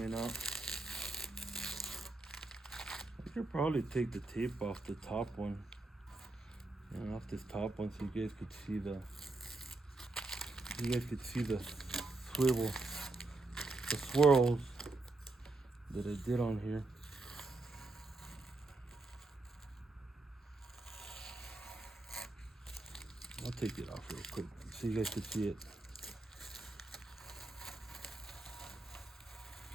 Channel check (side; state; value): left; quieter; 3.1 dB